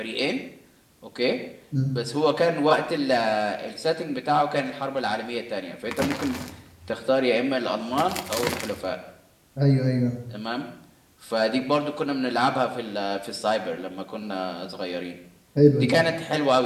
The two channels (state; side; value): identical; both; correlation 1.00